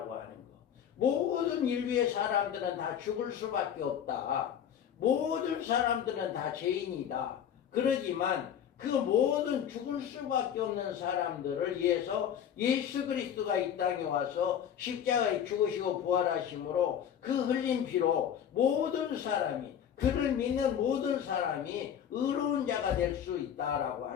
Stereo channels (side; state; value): right; quieter; 9.0 dB